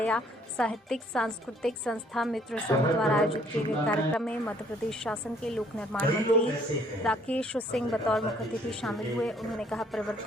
साहित्यिक सांस्कृतिक संस्था मित्र संघ द्वारा आयोजित किए गए कार्यक्रम में मध्य प्रदेश शासन के लोक निर्माण मंत्री राकेश सिंह बतौर मुख्य अतिथि शामिल हुए। उन्होंने कहा,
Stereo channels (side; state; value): both; normal; correlation 0.62